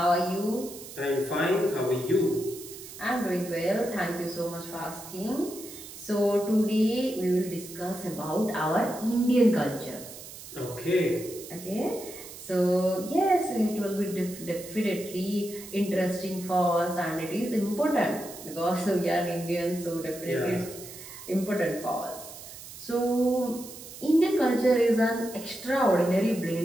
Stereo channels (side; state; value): right; noise; hiss, 14 dB below the sound